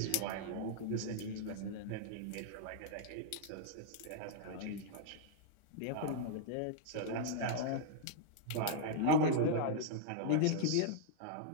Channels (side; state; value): both; different; correlation -0.02